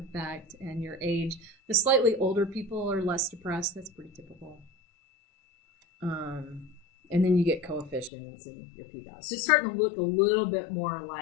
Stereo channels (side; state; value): right; drops out; at 8.1 s